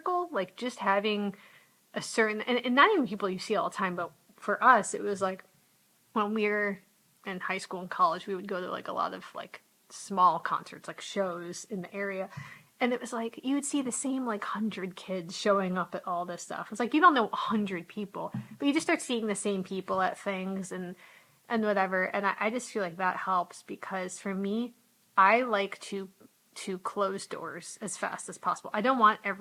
Like, just having a certain, and not even people you see all the time, but for us, it was like when we were in high school and college, we would go to like a lot of like small concerts, like shows in the area. And it was like you would see the same like 100 kids showing up at all this stuff. It's like you don't know 100 people, but you just start seeing the same people at things and whatever. And I just feel like that helps because for me, I like to close doors as fast as possible. I don't want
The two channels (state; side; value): identical; both; correlation 1.00